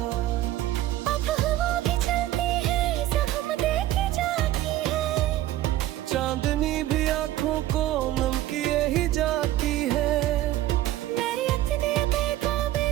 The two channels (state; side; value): quieter; left; 14.4 dB